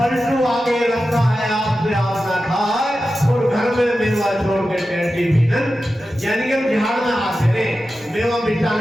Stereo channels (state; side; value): normal; both; correlation 0.93